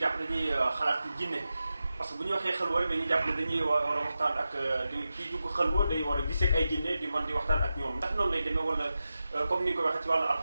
dañuy xalaat ci jinne parce que bu ñu waxee xelwa rek dañuy jàpp ne dañuy war a waxtaan ak kii dugg xelwa day war a gisee ak ay jinne di mën di waxtaan ak ñoom ndax noonu lay demee wala comme ni nga ko waxee ci wàllu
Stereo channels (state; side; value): inverted; both; correlation -0.92